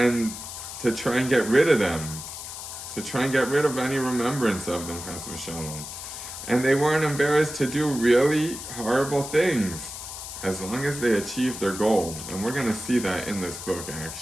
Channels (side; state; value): left; noise; hiss, 9 dB below the sound